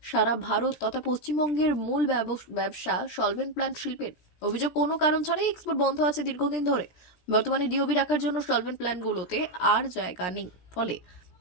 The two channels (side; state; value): right; late; 17 ms